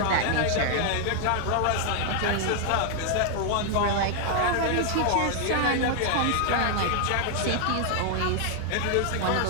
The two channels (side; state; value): both; different; correlation 0.00